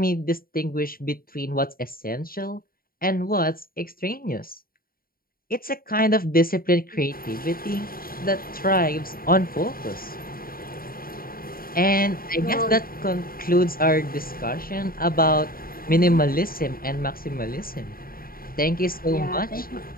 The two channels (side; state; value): right; late; 0.43 ms